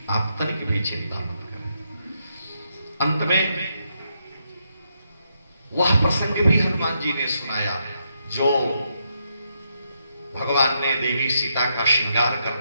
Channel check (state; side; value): inverted; both; correlation -0.79